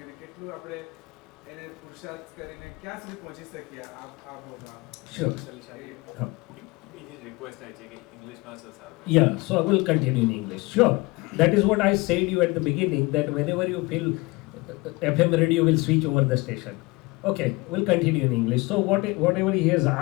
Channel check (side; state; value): right; quieter; 24.0 dB